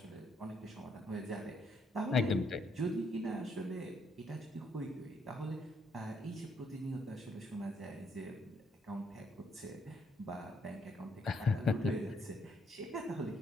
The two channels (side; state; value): both; normal; correlation 0.72